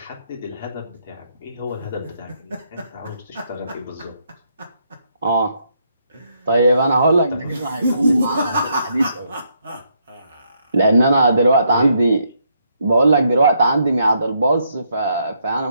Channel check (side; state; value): both; inverted; correlation -0.75